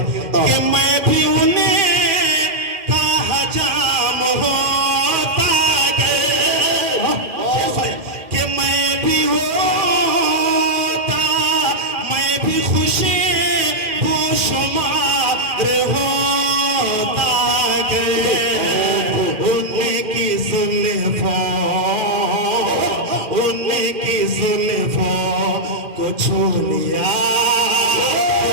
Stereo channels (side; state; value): left; late; 2.4 ms